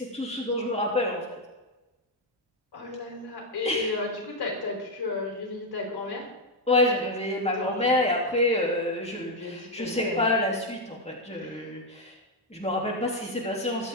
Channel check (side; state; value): both; normal; correlation 0.03